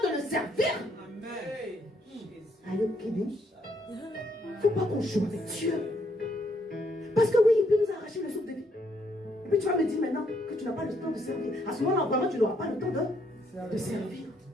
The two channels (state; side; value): normal; both; correlation 0.72